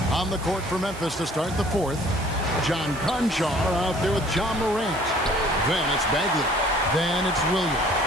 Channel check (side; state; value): right; noise; hiss, 17 dB below the sound